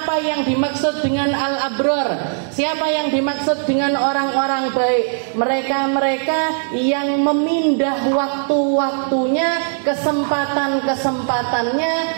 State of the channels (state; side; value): silent; left; 63 dB below the other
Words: yang dimaksud dengan al-abrar. Siapa yang dimaksud dengan orang-orang baik? Mereka-mereka yang memindah waktu-waktunya, kesempatan-kesempatannya,